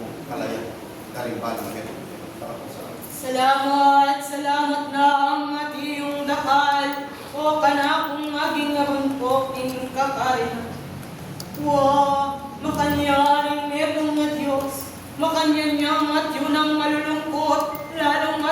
kalaya karimbalang Petro. Salamat na ang atiyong dakal, o kanakong maging narumpok ing kakarin. Makanyaring merong na Diyos, makanyanyang at yun ang malulungkot, lalong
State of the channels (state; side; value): identical; both; correlation 1.00